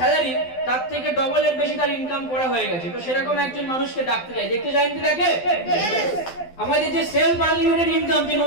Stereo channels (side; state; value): right; late; 12 ms